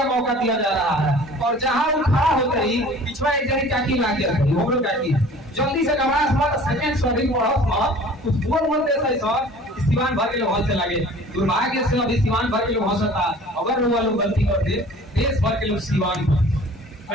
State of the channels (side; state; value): both; normal; correlation 0.47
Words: मौका दिया जा रहा है। और जहां वो खड़ा होते ही पिछवा एक जनी टाकी लाग गया हो गया टाकी जल्दी से गवास मत सेकेंड सॉरी बढ़त मत कुछ बोल मत दे सही सर सिवान भर के लोग से लगे दुर्भाग्य से अभी सिवान भर के लोग हंसता अगर वो लोग गलती कर दे देश भर के लोग सिवान